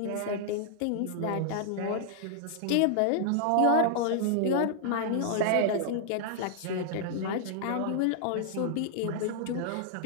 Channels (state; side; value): different; both; correlation -0.01